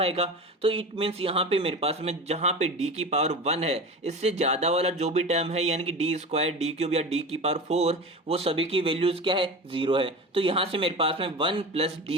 तो इट मीन्स यहाँ पे मेरे पास में जहाँ पे d की पावर 1 है इससे ज़्यादा वाला जो भी टर्म है यानी कि डी स्क्वायर डी क्यूब या d की पावर 4 वो सभी की वैल्यूज क्या है, 0 है। तो यहाँ से मेरे पास में 1 प्लस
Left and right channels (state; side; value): normal; both; correlation 0.30